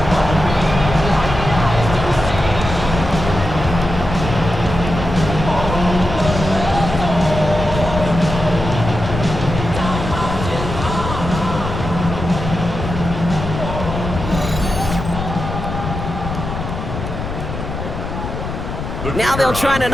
Now they'll try to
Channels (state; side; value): noise; left; rumble, 6 dB below the sound